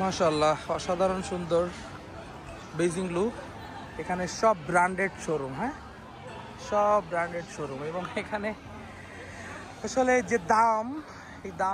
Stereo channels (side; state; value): both; identical; correlation 1.00